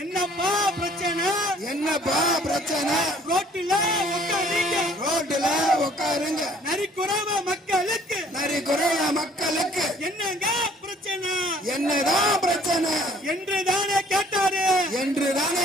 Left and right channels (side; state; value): both; normal; correlation 0.58